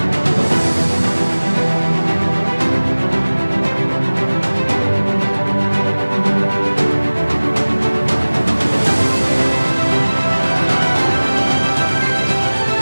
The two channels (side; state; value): both; inverted; correlation -1.00